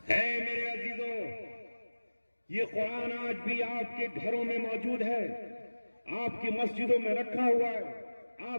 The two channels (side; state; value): both; inverted; correlation -1.00